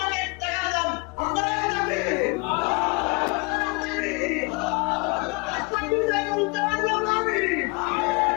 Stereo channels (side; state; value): right; quieter; 29.4 dB